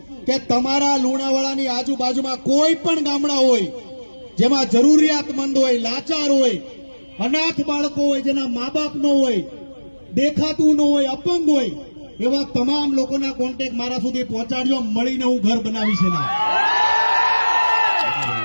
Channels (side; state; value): both; inverted; correlation -1.00